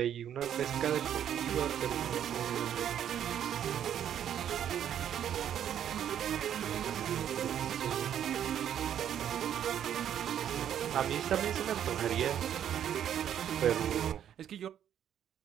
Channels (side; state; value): left; quieter; 9.8 dB